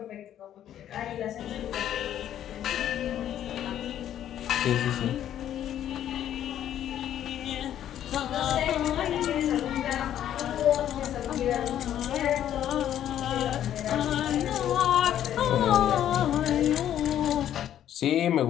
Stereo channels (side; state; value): right; quieter; 11.0 dB